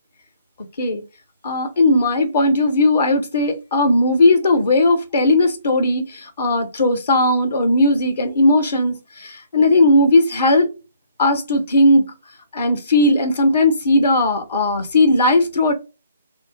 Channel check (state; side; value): inverted; both; correlation -0.64